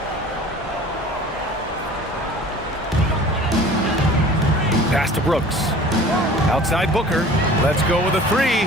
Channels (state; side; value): normal; both; correlation 0.44